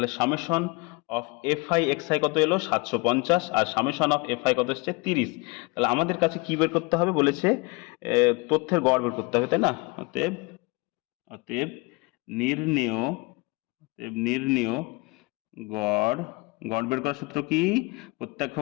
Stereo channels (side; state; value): right; quieter; 26.5 dB